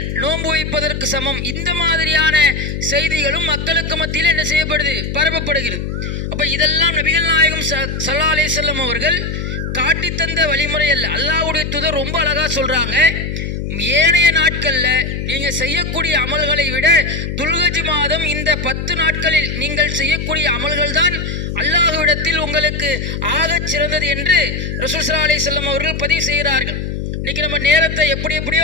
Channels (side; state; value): left; noise; hum, 4 dB below the sound